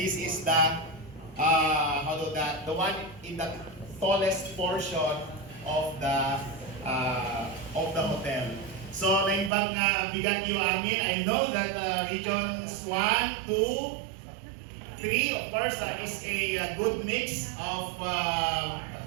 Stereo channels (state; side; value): drops out; left; at 9.5 s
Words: is the the one in the tallest portion of the hotel. So naimbag nga bigat yung amin. I know that regions 1, 2, 3, of course, is a good mix of